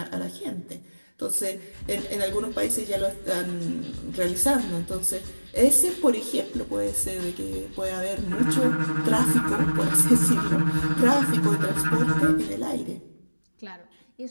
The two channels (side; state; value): both; inverted; correlation -1.00